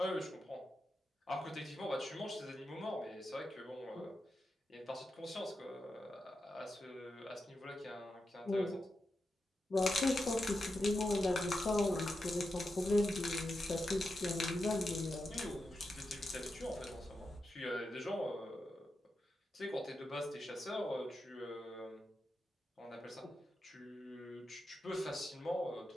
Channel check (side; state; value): both; normal; correlation 0.88